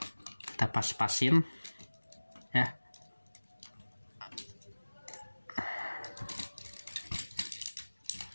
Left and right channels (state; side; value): inverted; both; correlation -1.00